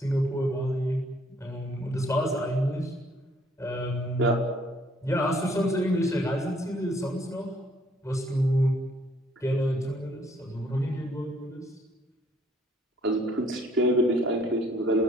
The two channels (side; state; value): both; normal; correlation 0.63